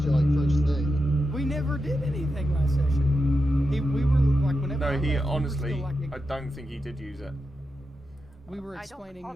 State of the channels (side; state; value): both; normal; correlation 0.88